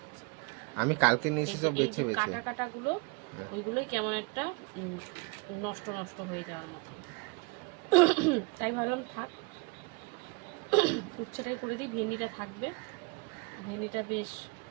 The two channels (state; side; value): quieter; left; 28.7 dB